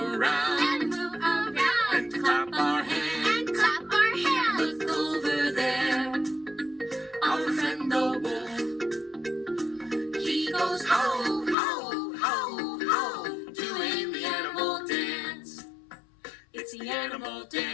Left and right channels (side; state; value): right; drops out; at 11.6 s